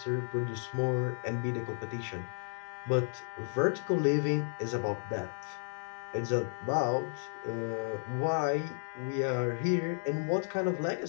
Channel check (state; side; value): silent; right; digital silence